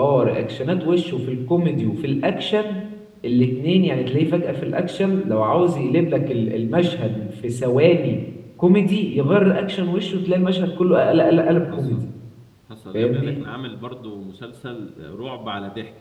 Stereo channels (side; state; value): both; identical; correlation 1.00